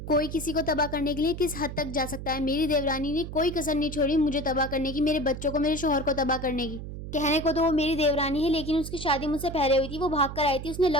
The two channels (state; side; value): noise; right; hum, 9 dB below the sound